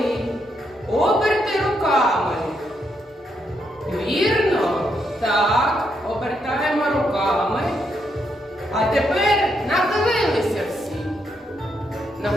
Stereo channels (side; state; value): both; normal; correlation 0.78